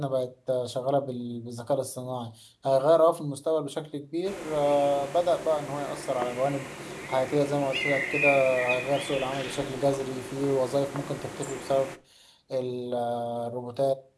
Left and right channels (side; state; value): both; identical; correlation 1.00